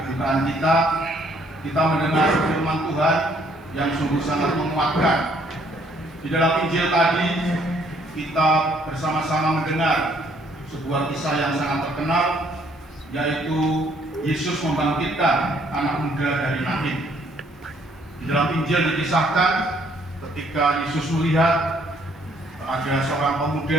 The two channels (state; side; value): normal; both; correlation 0.65